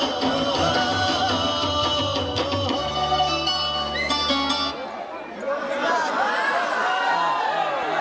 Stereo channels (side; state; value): both; identical; correlation 1.00